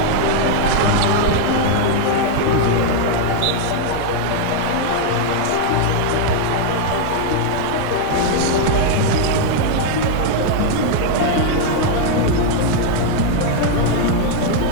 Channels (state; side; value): different; both; correlation 0.00